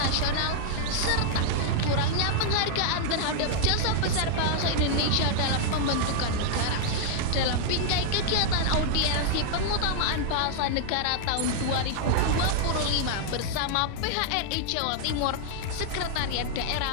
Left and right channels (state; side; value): different; both; correlation -0.01